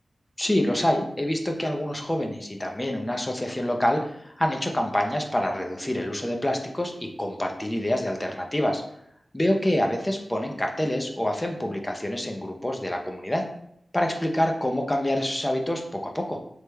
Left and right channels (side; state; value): both; normal; correlation 0.98